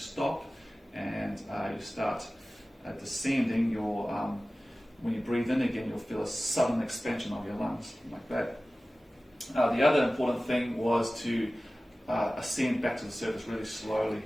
and you start descending, when you breathe in again, you'll feel a sudden expansion of your lungs, like that. The other important thing was to ascend back to the surface really slowly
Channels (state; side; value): normal; both; correlation 0.97